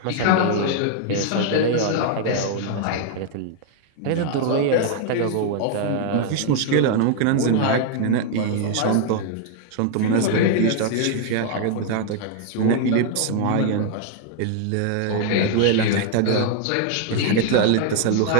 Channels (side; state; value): both; different; correlation 0.00